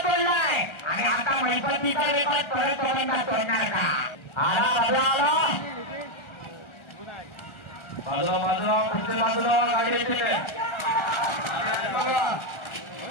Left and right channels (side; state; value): right; late; 1.3 ms